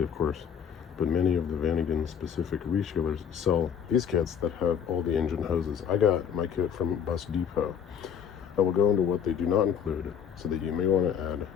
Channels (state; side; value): quieter; right; 7.9 dB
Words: of course, but many of the VanAgain specific resellers sell these kits that have all the engine hoses. I got my kit from Bus Depot. I will go into what they do not include so that you may want to add